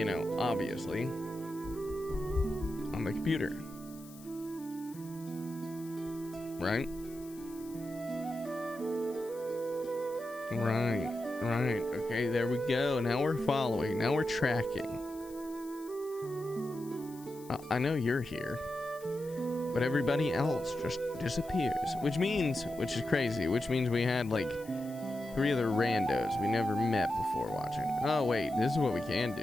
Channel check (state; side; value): noise; left; hiss, 21 dB below the sound